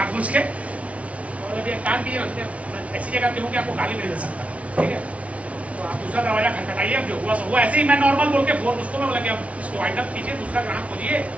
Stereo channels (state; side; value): late; left; 0.064 ms